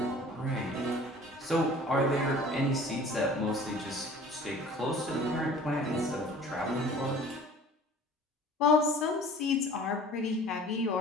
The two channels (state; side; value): normal; both; correlation 0.46